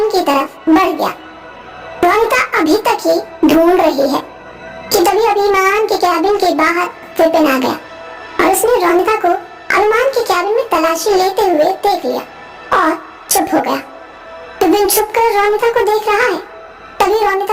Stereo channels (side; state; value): both; identical; correlation 1.00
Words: की तरफ बढ़ गया। रोनिता अभी तक ही ढूंढ रही है कि तभी अभिमान के कैबिन के बाहर विपिन आ गया और उसने रोनिता को अभिमान के कैबिन में तलाशी लेते हुए देख लिया और चुप हो गया। विपिन छुप कर रोनिता को देख रहा है। तभी